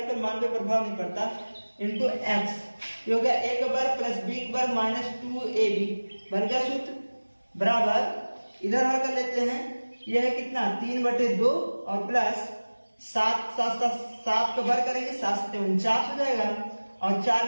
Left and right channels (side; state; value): both; inverted; correlation -1.00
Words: पर मान पे प्रभाव नहीं पड़ता, इंटू x। ये हो गया a का वर्ग प्लस b का वर्ग -2ab बन गया सूत्र, बराबर इधर हल कर लेते हैं। यह है कितना? 3/2 और प्लस 7 का वर्ग करेंगे, 7 × 7 = 49 हो जाएगा, और 4